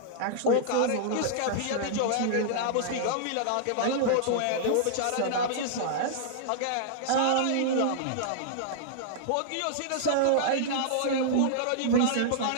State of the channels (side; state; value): both; different; correlation -0.01